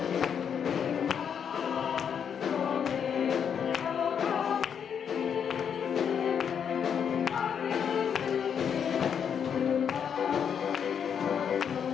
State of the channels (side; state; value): right; quieter; 7.7 dB